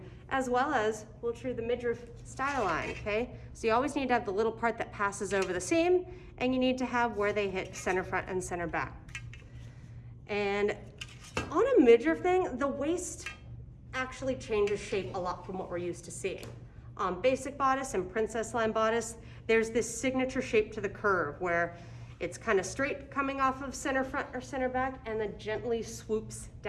as well as we'll true the midriff style line, okay? So you always need to have the little part that passes over the seam, and you need to have where they hit center front and center back. And on a midriff thing, the waist actually changes shape a lot from what we're used to seeing. On basic bodice and princess line bodice, there's this signature shape to the curve where it's kind of straight coming off of center front or center back and then gently swoops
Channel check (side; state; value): both; identical; correlation 1.00